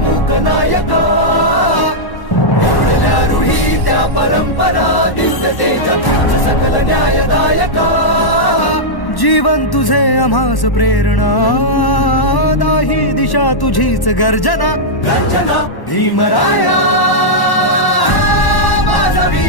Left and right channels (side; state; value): right; late; 1.1 ms